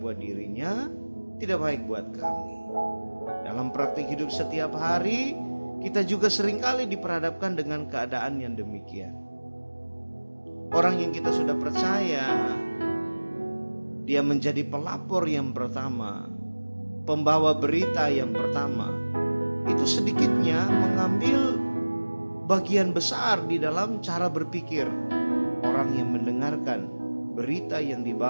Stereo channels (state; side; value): inverted; both; correlation -1.00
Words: buat dirinya, tidak baik buat kami. Dalam praktik hidup setiap hari, kita juga seringkali diperhadapkan dengan keadaan yang demikian. Orang yang kita sudah percaya, dia menjadi pelapor yang pertama, pembawa berita yang pertama, itu sedikitnya mengambil bagian besar di dalam cara berpikir orang yang mendengarkan berita yang